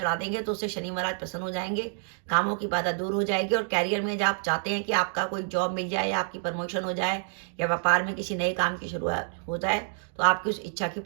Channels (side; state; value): left; silent; digital silence